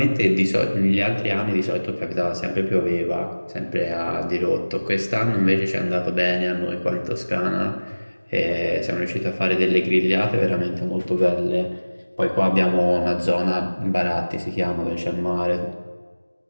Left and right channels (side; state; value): both; inverted; correlation -1.00